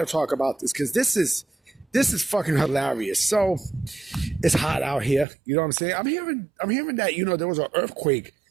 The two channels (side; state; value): left; drops out; at 5.2 s